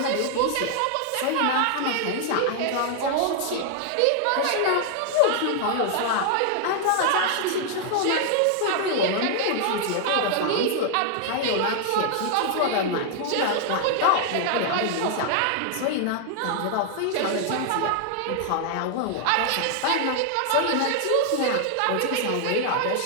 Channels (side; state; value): both; different; correlation 0.00